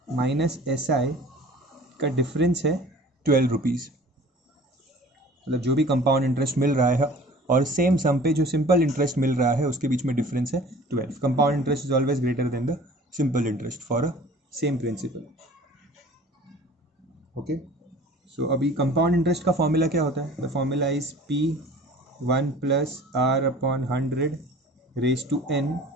minus SI का difference है 12 rupees. मतलब जो भी compound interest मिल रहा है और same सम पे जो सिंपल इंटरेस्ट मिल रहा है उसके बीच में डिफरेंस है 12. Compound interest is always greater than the simple interest for a same principal. Okay, so अभी कंपाउंड इंटरेस्ट का फॉर्मूला क्या होता है, the formula is P one plus R upon 100 raise to N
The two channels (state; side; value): normal; both; correlation 0.46